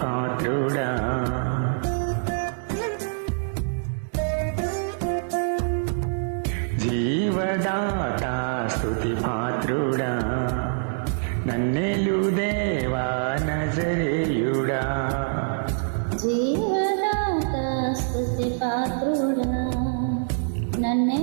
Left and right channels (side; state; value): left; silent; 61 dB below the other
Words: జీవదాత స్తుతి పాత్రుడా, నన్నెలు దేవా నజరేయుడా. జీవదాత స్తుతి పాత్రుడా,